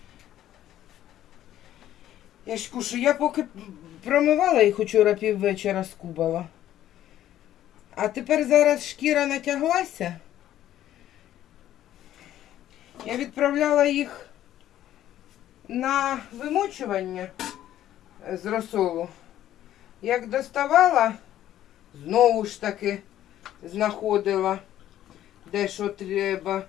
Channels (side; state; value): right; quieter; 12.4 dB